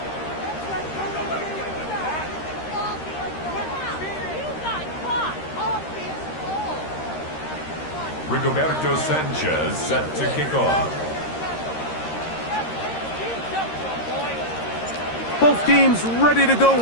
Rigoberto Sanchez set to kick off. Both teams ready to go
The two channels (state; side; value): late; right; 13 ms